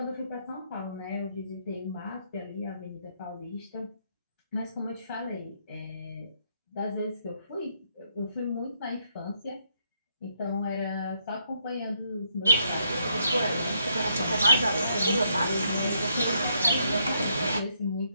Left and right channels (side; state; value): both; inverted; correlation -0.75